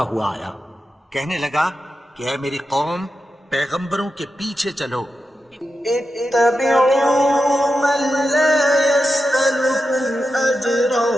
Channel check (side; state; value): both; normal; correlation 0.90